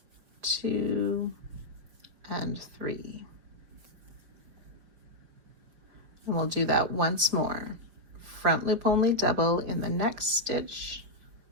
2 and 3. And we'll do that once more. Front loop only double in the next stitch,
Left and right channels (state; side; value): late; left; 5.4 ms